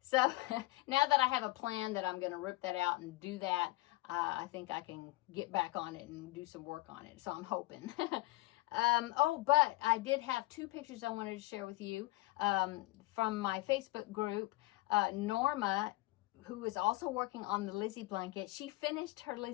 So now that I have a plan that I'm going to rip that out and do that, I think I can get back on it and do some work on it. So I'm hoping. Oh, but I did have 2 pictures I wanted to share with you from my Facebook group. Norma, who is also working on the Lizzie Blanket, she finished her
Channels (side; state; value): right; quieter; 20.1 dB